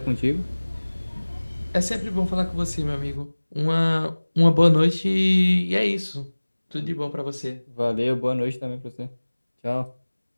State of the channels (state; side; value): inverted; both; correlation -1.00